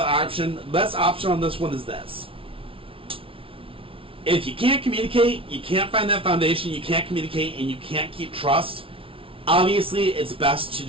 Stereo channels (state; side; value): late; left; 0.26 ms